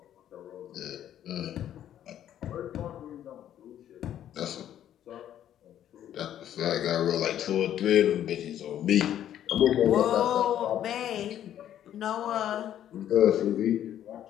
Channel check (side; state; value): right; quieter; 11.0 dB